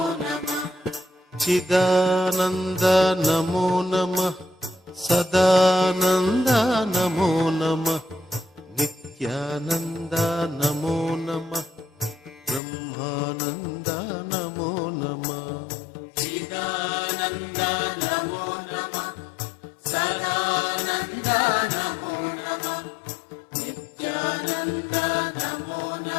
నమ. చిదానంద నమో నమ, సదానంద నమో నమ, నిత్యానంద నమో నమ, బ్రహ్మానంద నమో నమ. చిదానంద నమో నమ, సదానంద నమో నమ, నిత్యానంద నమో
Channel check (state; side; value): drops out; right; at 12.6 s